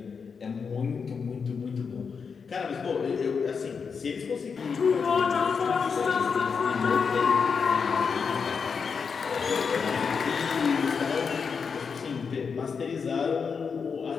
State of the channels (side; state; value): right; quieter; 5.8 dB